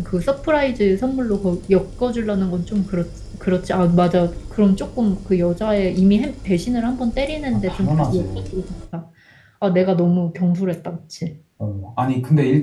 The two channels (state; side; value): identical; both; correlation 1.00